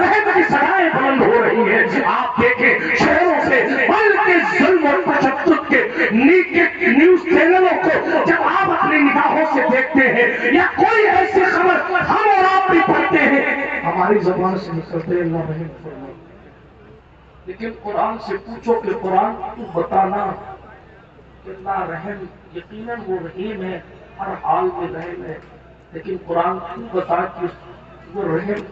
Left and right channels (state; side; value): identical; both; correlation 1.00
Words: کی صدائیں بلند ہو رہی ہیں. آپ دیکھیں شہروں سے بلکہ ظلم اور تشدد کے نیوز چینلوں کو جب آپ اپنی نگاہوں سے دیکھتے ہیں یا کوئی ایسی خبر ہم اور آپ بھی پڑھتے ہیں، ہماری زبان سے نکلتے اللہ رحم فرما. لیکن قرآن سے پوچھو کہ قرآن تو بتانا کہ اللہ رحم، یقیناً وہ رحیم ہے، ہر حال میں رحم ہے، لیکن قرآن تو بتا کہ وہ رحم